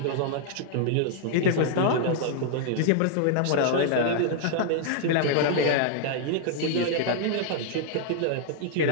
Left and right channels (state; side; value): different; both; correlation 0.00